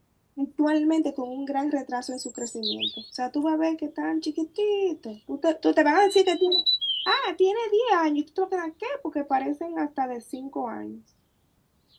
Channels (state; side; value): identical; both; correlation 1.00